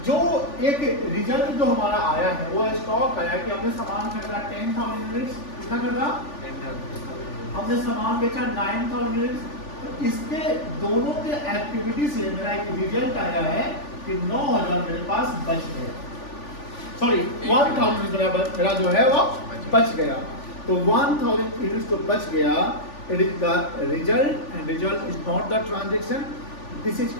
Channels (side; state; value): right; late; 3.4 ms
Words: जो एक रिजल्ट जो हमारा आया है, वो स्टॉक आया कि हमने सामान खरीदा 10,000 यूनिट्स, कितना खरीदा, हमने सामान बेचा 9,000 यूनिट्स। तो इसके दोनों के एक्टिविटी से मेरा एक रिजल्ट आया है कि 9,000 मेरे पास बच गया, सॉरी 1,000 मेरा जो है वो बच गया। तो 1,000 यूनिट्स तो बच गया, it is the result, and result is not the transaction, this is